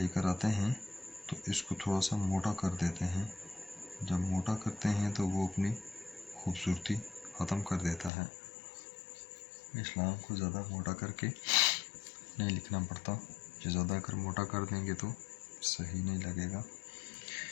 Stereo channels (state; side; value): drops out; right; at 8.1 s